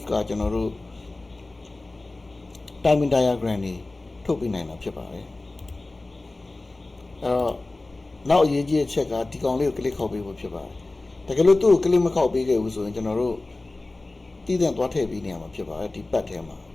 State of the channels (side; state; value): right; quieter; 3.1 dB